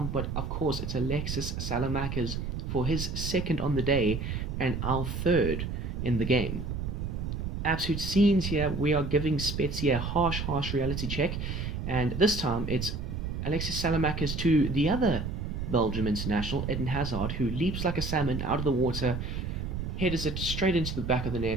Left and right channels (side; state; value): right; noise; rumble, 4 dB below the sound